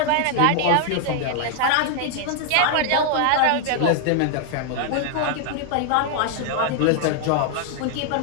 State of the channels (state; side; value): different; both; correlation 0.00